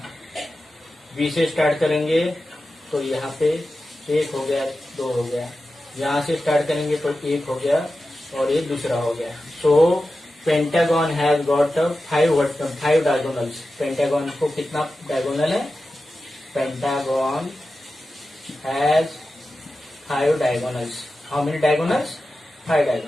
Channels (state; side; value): normal; both; correlation 0.93